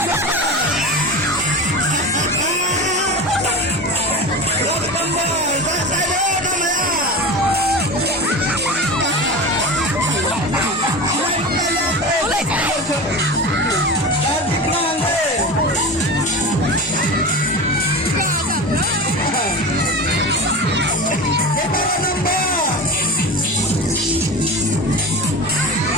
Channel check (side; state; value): both; normal; correlation 0.28